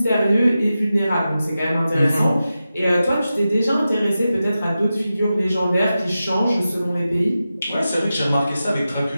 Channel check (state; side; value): inverted; both; correlation -0.92